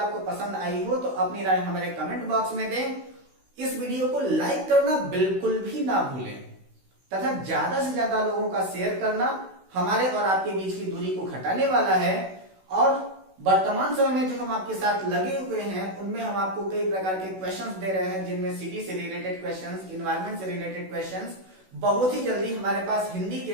पसंद आई हो तो अपनी राय हमारे कमेंट बॉक्स में दें। इस वीडियो को लाइक करना बिल्कुल भी ना भूलें तथा ज्यादा से ज्यादा लोगों का शेयर करना हमारे और आपके बीच की दूरी को घटाने वाला है। और वर्तमान समय में जो हम आपके साथ लगे हुए हैं उनमें हम आपको कई प्रकार के क्वेश्चंस दे रहे हैं, जिनमें सिटी से रिलेटेड क्वेश्चंस, एनवायरनमेंट से रिलेटेड क्वेश्चंस बहुत ही जल्दी हमारे पास हिंदी के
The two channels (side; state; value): left; late; 16 ms